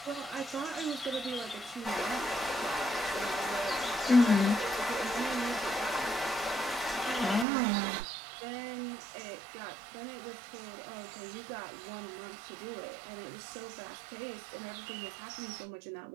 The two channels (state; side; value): drops out; left; at 7.5 s